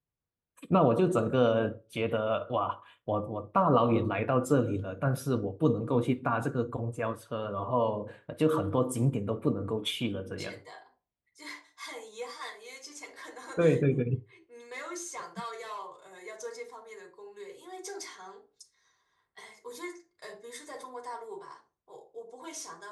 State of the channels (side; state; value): both; identical; correlation 1.00